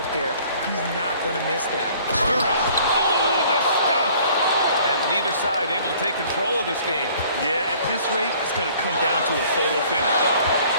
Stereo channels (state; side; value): inverted; both; correlation -0.55